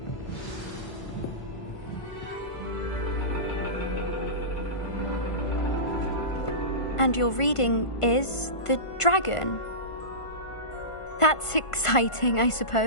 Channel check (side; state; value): right; late; 1.5 ms